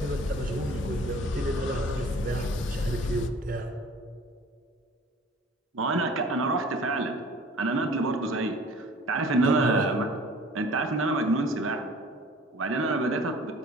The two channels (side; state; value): both; normal; correlation 0.48